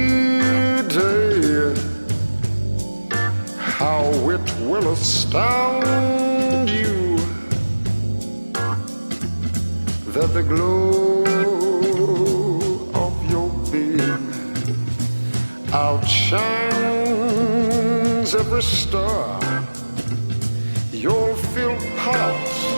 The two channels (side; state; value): both; inverted; correlation -1.00